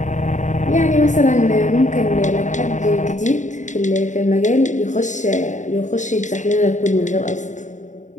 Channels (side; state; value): right; late; 0.35 ms